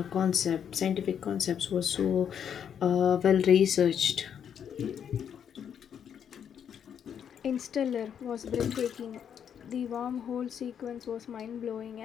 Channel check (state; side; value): quieter; right; 8.4 dB